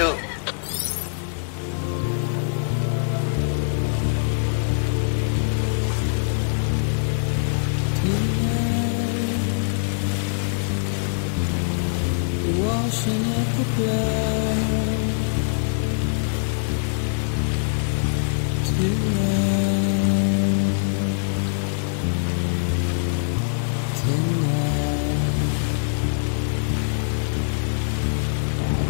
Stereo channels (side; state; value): right; silent; 63 dB below the other